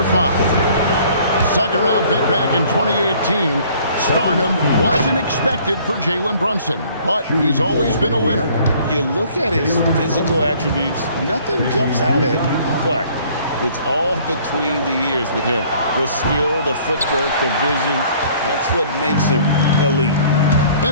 5. Second round pick back in 2018. Stardom wasn't expected for Jalen Brunson, but he's always been a winner. You look at his physical attributes, nothing jumps out at you, but it's all between the ears with him. The skill, the footwork, the vision, that's what makes him elite.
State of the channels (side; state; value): both; inverted; correlation -0.56